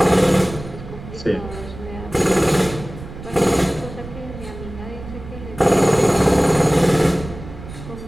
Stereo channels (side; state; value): right; noise; rumble, 13 dB below the sound